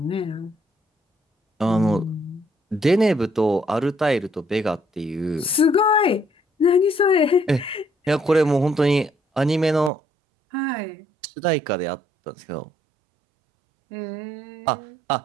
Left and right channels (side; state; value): left; drops out; at 9.9 s